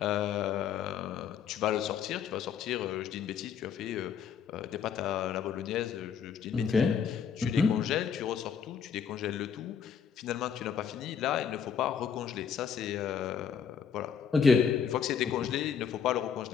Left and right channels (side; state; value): right; quieter; 7.3 dB